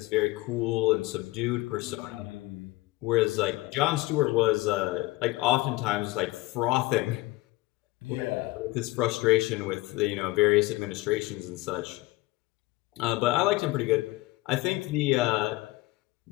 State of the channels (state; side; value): quieter; right; 20.3 dB